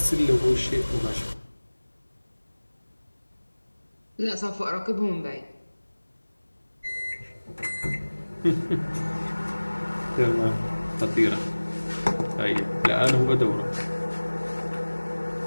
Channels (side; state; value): both; inverted; correlation -1.00